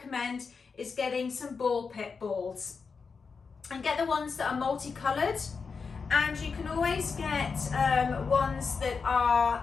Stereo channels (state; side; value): quieter; right; 5.2 dB